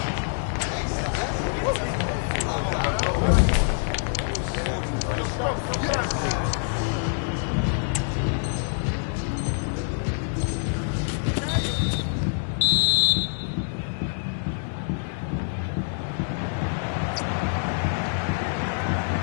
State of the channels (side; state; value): right; silent; digital silence